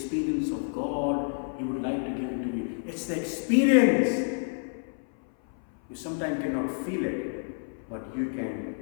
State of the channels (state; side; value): silent; right; 58 dB below the other